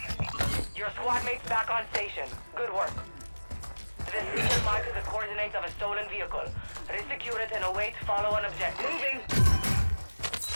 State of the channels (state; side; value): inverted; both; correlation -1.00